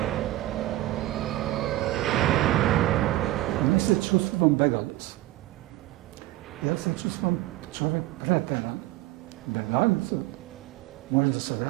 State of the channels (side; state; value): left; quieter; 16.6 dB